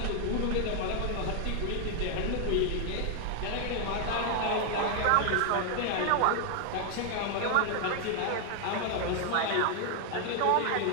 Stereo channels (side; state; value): both; different; correlation 0.00